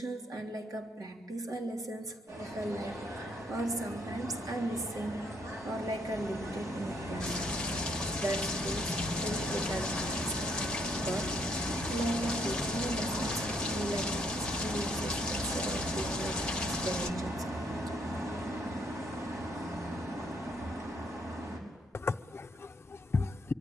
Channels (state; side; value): normal; both; correlation 0.70